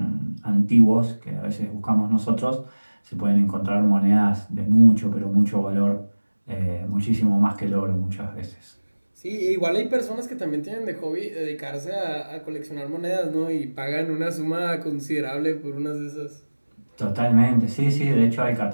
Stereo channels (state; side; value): inverted; both; correlation -1.00